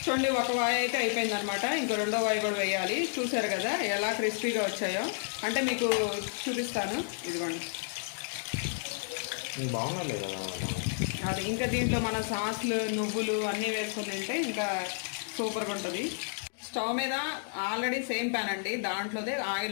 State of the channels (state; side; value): silent; right; digital silence